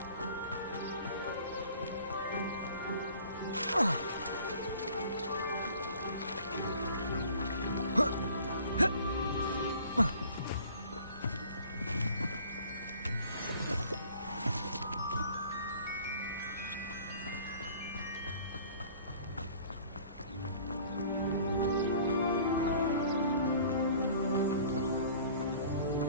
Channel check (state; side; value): inverted; both; correlation -0.50